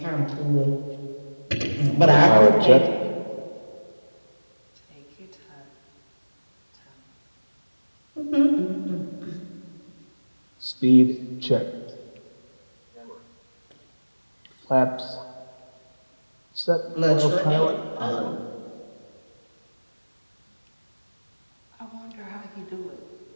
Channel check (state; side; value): inverted; both; correlation -1.00